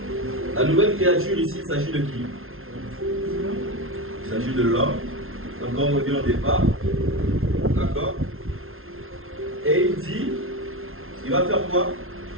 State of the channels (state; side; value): late; left; 0.61 ms